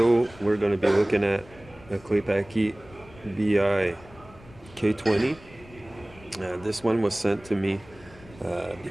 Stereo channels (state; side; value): noise; left; rumble, 22 dB below the sound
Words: we're going to be looking at a Paky B-EYE K20. This one was sent to me